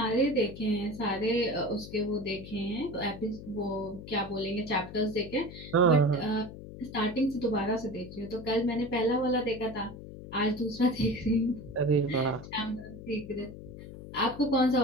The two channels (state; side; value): noise; left; hum, 13 dB below the sound